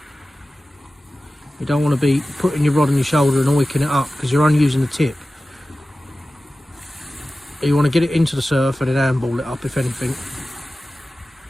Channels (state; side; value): normal; both; correlation 0.95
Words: You don't want to be putting your rod on your shoulder and wicking it up, because you're only using the tip. You want to get it into the surf and then handball it up, if anything,